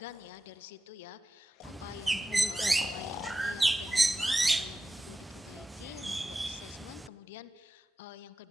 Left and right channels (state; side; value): normal; both; correlation 0.94